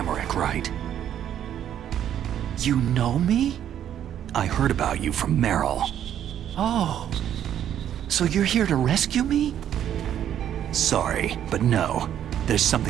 right? You know me? I heard about you from Meryl. Oh. So you're here to rescue me? Sorry, but no. There's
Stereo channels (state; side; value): quieter; left; 10.3 dB